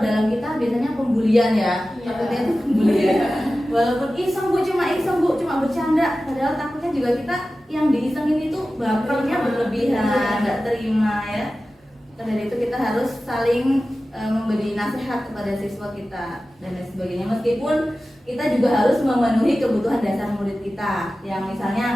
dalam kita biasanya pembulian ya, takutnya itu pembulian. Walaupun iseng bu, cuma bercanda, padahal takutnya juga kita yang diisengin itu bapernya berlebihan, nggak terima ya. Dari itu kita harus saling memberi nasihat kepada siswa kita dan lain sebagainya. Meskipun kita juga harus memenuhi kebutuhan dasar murid kita, yang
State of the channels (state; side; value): normal; both; correlation 0.95